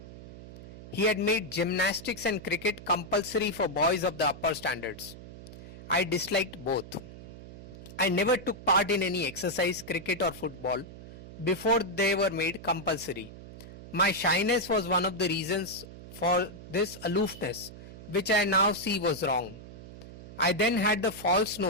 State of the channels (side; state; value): right; noise; hum, 15 dB below the sound